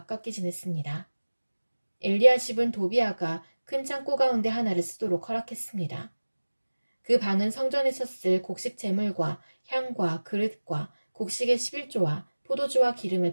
지냈습니다. 엘리야십은 도비야가 큰 창고 가운데 하나를 쓰도록 허락했습니다. 그 방은 성전에서 쓸 곡식 제물과 향과 그릇과 곡식의 11조와 포도주와 기름을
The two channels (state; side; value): inverted; both; correlation -1.00